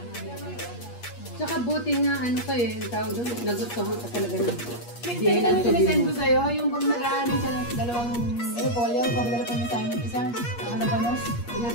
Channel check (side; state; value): right; late; 8.4 ms